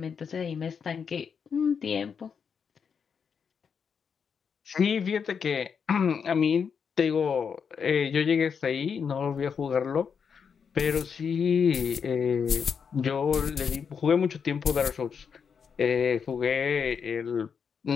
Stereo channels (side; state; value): right; quieter; 6.6 dB